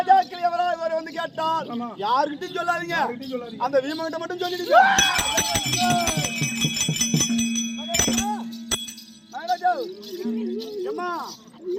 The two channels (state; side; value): identical; both; correlation 1.00